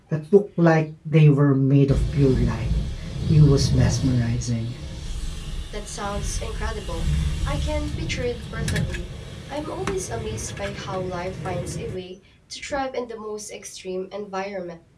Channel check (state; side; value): identical; both; correlation 1.00